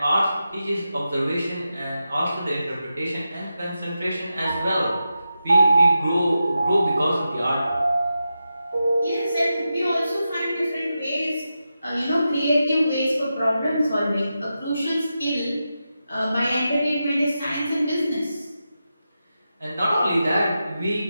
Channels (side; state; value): both; inverted; correlation -0.90